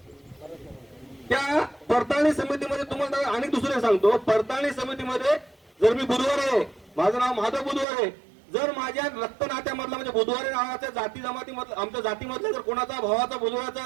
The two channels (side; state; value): left; drops out; at 7.9 s